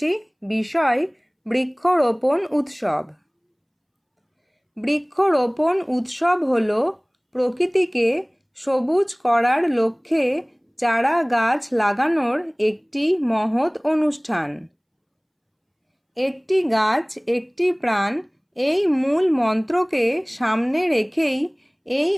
বিষয় বৃক্ষরোপণ উৎসব। বৃক্ষরোপণ উৎসব হল প্রকৃতিকে সবুজ করার লক্ষ্যে চারা গাছ লাগানোর একটি মহৎ অনুষ্ঠান। একটি গাছ একটি প্রাণ, এই মূল মন্ত্রকে সামনে রেখেই এই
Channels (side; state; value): both; identical; correlation 1.00